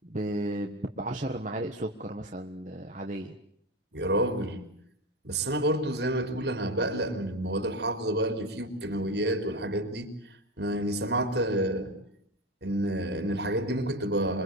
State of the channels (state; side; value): normal; both; correlation 0.19